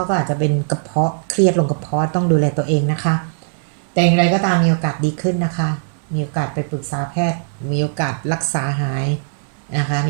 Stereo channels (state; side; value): silent; left; digital silence